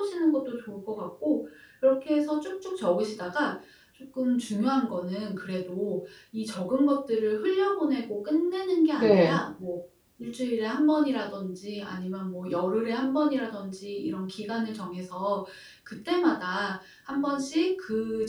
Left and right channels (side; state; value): both; identical; correlation 1.00